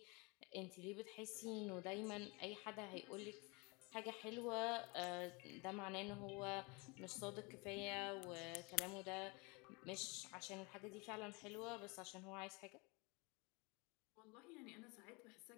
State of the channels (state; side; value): quieter; right; 28.3 dB